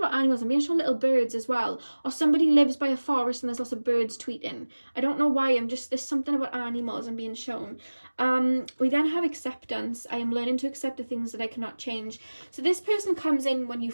animals. I'm being shown little birds as well, or somebody lives by a forest and there's lots of birds tweeting. I don't know why, there's something about animals I'm being shown. We then have acceptance. I am learning to accept the things that I cannot change. So this person comes in when you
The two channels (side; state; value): both; inverted; correlation -1.00